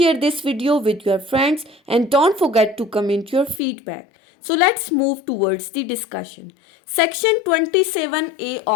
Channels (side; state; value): right; drops out; at 3.6 s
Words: this video with your friends and don't forget to comment your feedback. So let's move towards the discussion. Section 27A